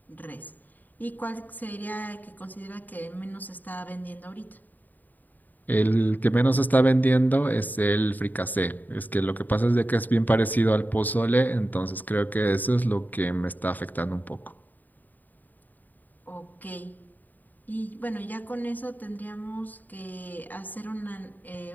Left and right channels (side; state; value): right; late; 0.085 ms